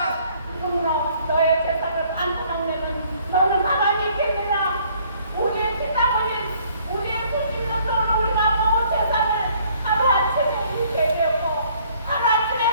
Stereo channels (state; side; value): inverted; both; correlation -0.61